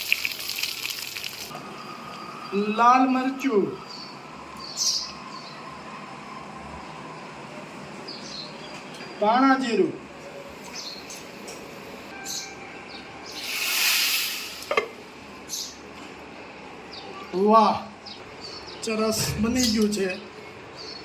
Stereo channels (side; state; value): both; identical; correlation 1.00